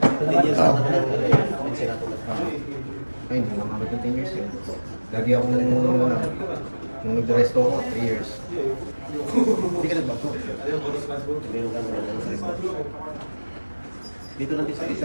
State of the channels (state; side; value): inverted; both; correlation -1.00